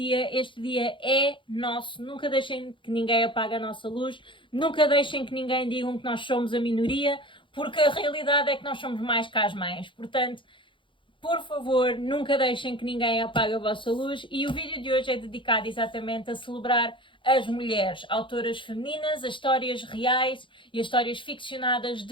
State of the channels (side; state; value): right; late; 0.24 ms